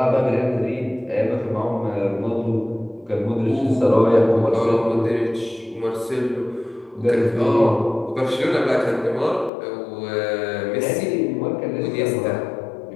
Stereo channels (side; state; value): right; drops out; at 9.5 s